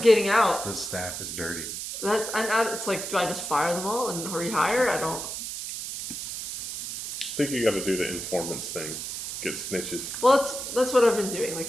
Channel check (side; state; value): right; noise; hiss, 6 dB below the sound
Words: out. The staff is dirty. It's like, do I just fire them all and rehire? I don't. I think you got to do the informants thing. Get snitches. Well, that's what I've been doing.